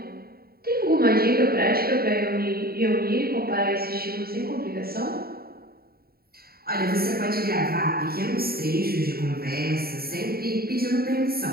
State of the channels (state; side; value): late; left; 0.44 ms